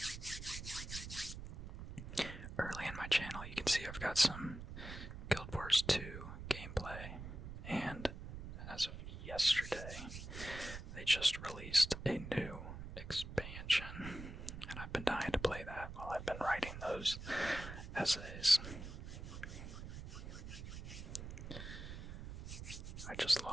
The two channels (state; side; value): noise; right; rumble, 9 dB below the sound